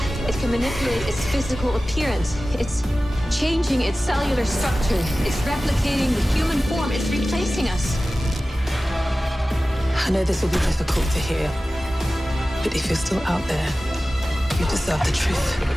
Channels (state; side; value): normal; both; correlation 0.96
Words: It can manipulate its physical appearance. It's changing its cellular structure. It's replicating the human form. It's replacing us. I know this will be difficult to hear, but if you're still out there, you deserve the